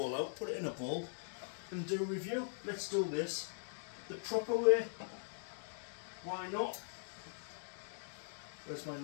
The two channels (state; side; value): silent; right; digital silence